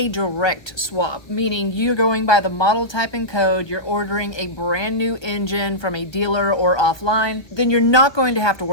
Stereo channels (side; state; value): right; late; 1.4 ms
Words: direct swap, meaning you're going by the model type and code, you're ordering a brand new engine from a dealer or offline, then you're not going to have to